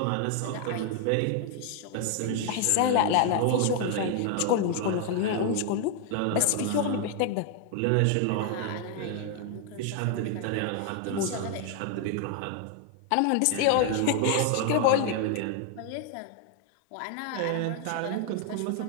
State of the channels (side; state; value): both; different; correlation 0.00